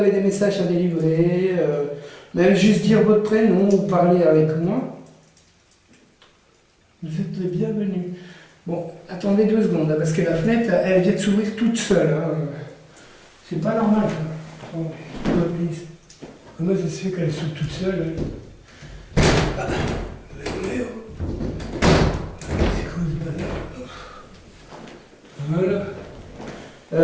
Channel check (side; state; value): both; identical; correlation 1.00